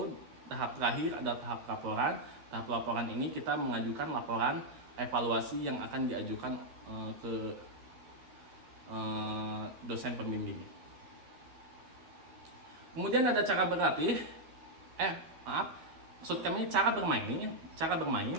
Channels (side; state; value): left; late; 13 ms